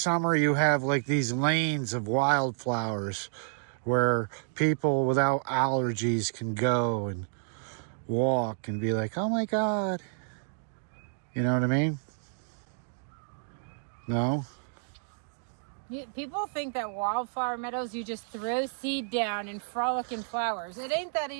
you have like these lanes of wildflowers where people without allergies can go and walk and be like, oh my God. You know what I mean? No? People think that wildflower meadows, you just throw seed down and frolic in flowers. It ain't that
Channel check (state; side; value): silent; left; digital silence